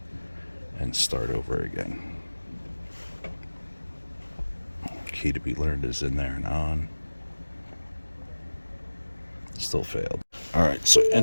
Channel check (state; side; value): inverted; both; correlation -1.00